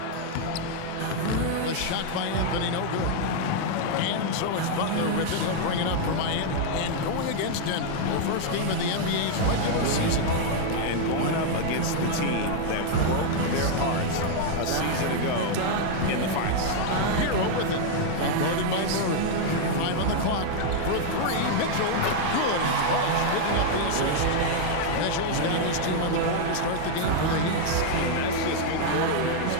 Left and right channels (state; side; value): different; both; correlation 0.00